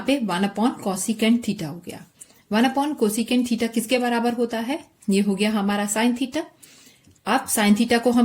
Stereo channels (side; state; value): both; identical; correlation 1.00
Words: पे 1 अपॉन कोसिकेंट थीटा हो गया. 1 अपॉन कोसिकेंट थीटा किसके बराबर होता है, ये हो गया हमारा साइन थीटा. अब साइन थीटा को हम